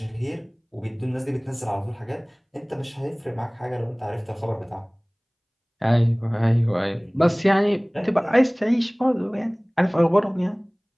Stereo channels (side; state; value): both; identical; correlation 1.00